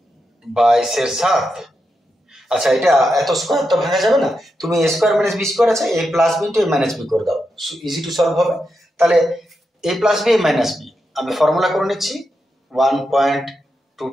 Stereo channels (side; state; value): both; normal; correlation 0.86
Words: 22/7। আচ্ছা, এটা এত স্কোয়ার তো ভাঙা যাবে না, তুমি এ স্কোয়ার মাইনাস বি স্কোয়ার আছে, এ প্লাস বি ইন্টু এ মাইনাস বি করে দাও, ইজি টু সলভ হবে। তাহলে এ plus B A minus B আমি ফর্মুলা করে নিচ্ছি,